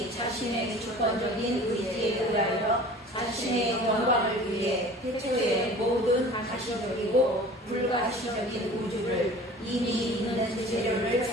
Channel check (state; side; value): normal; both; correlation 0.43